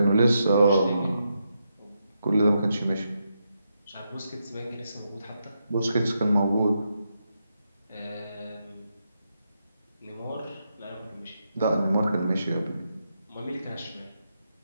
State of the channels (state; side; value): inverted; both; correlation -0.83